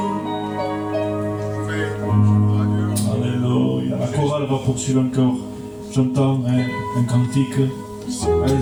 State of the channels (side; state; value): both; identical; correlation 1.00